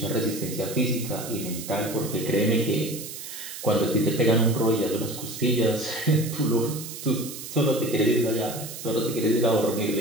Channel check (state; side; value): noise; right; hiss, 10 dB below the sound